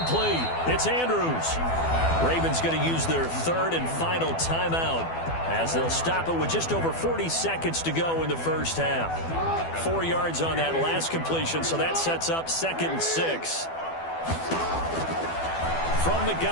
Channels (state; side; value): late; right; 12 ms